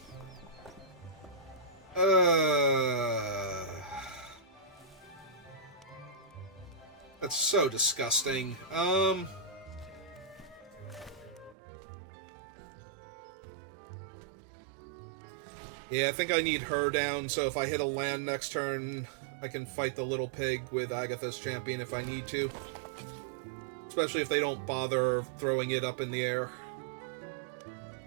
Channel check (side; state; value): left; drops out; at 11.6 s